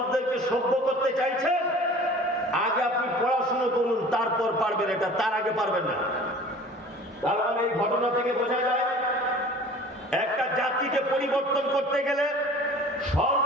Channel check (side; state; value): both; normal; correlation 0.45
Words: সভ্য করতে চাইছেন, আগে আপনি পড়াশোনা করুন, তারপর পারবেন এটা, তার আগে পারবেন না। তার মানে এই ঘটনা থেকে বোঝা যায়, একটা জাতিকে পরিবর্তন করতে গেলে